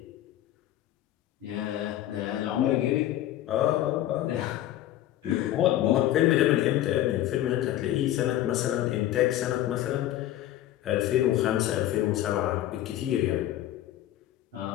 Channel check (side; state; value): right; quieter; 13.3 dB